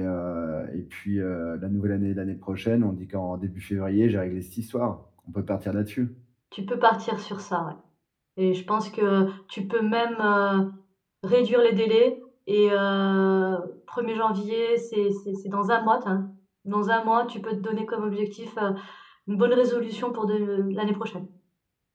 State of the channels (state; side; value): identical; both; correlation 1.00